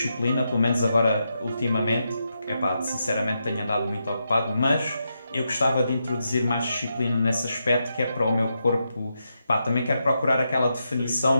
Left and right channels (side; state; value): both; inverted; correlation -0.84